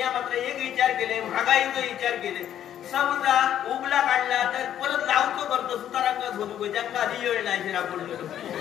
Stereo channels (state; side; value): quieter; right; 10.6 dB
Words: मात्र एक विचार केले महागाईचा विचार केले. समजा उगला काढला तर परत लावतो करतो सुतारांगत होतो ज्यांना आधी वेळ नाही पडलो.